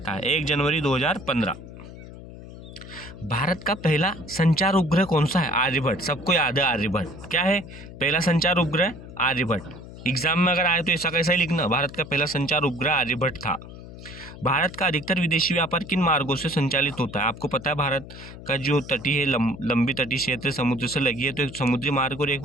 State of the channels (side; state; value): left; noise; hum, 15 dB below the sound